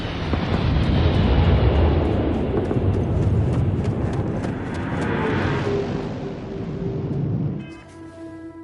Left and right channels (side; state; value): both; identical; correlation 1.00